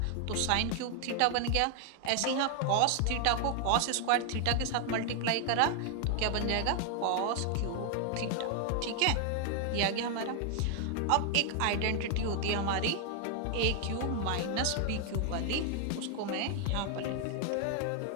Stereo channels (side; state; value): both; different; correlation 0.00